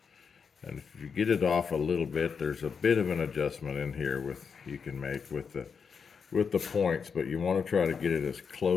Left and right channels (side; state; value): right; quieter; 6.1 dB